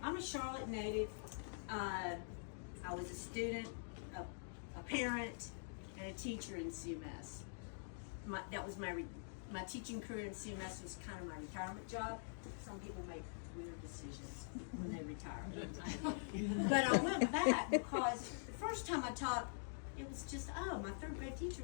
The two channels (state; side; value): silent; right; digital silence